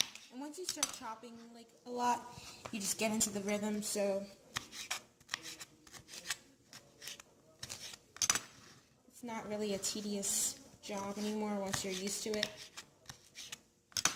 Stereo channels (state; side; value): identical; both; correlation 1.00